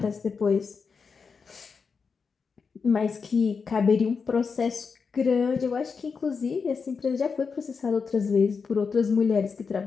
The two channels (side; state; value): right; quieter; 5.4 dB